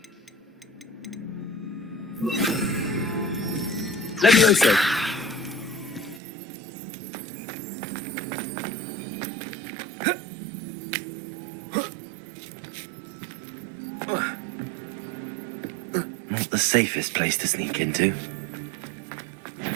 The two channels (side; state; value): left; drops out; at 6.2 s